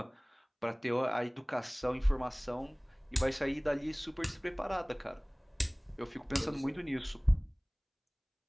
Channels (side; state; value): both; identical; correlation 1.00